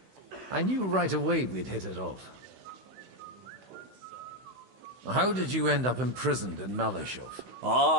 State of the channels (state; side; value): late; left; 16 ms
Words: I knew right away we'd hit it off. How did you end up imprisoned in Malashov?